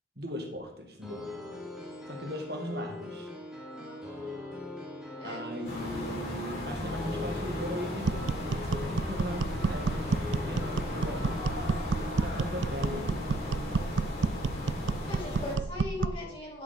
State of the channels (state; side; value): normal; both; correlation 0.64